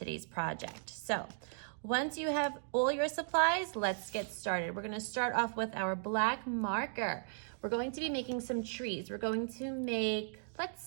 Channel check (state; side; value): silent; left; digital silence